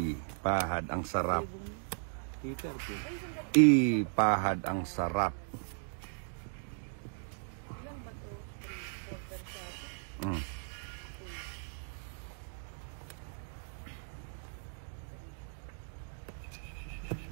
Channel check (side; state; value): left; silent; digital silence